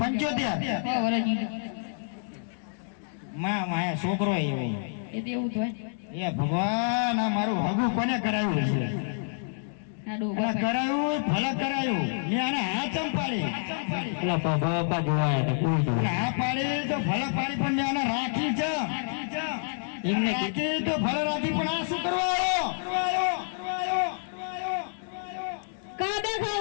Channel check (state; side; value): silent; right; digital silence